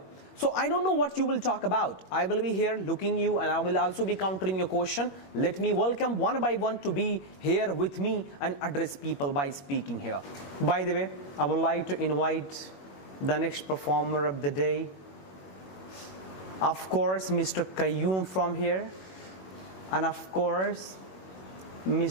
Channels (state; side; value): late; right; 21 ms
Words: So I don't know what you will talk about. I will be here looking you and I will also be countering your question. Let me welcome one by one to be here with me and address people by speaking here. By the way, I would like to invite the next performer of the day. Of course, Mr. Qayyum from here. And of course,